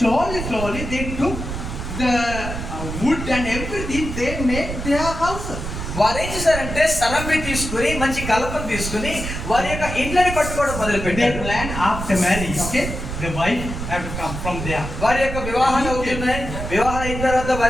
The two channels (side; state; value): right; noise; rumble, 6 dB below the sound